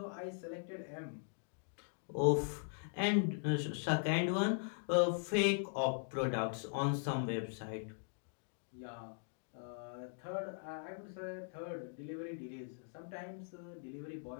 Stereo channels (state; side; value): silent; right; digital silence